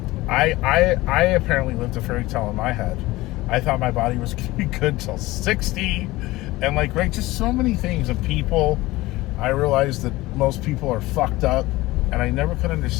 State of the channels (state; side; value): quieter; right; 19.1 dB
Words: I apparently lived a fairy tale in my head. I thought my body was gonna be good till 60, and like, right, just so many things and people. I realized that most people are fucked up, and I never could